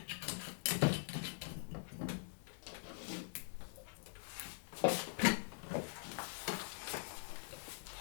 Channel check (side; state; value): right; silent; digital silence